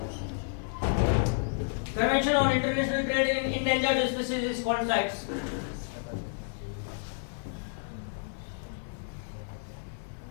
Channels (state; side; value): silent; right; 57 dB below the other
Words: Convention on international trade in endangered species is called sites.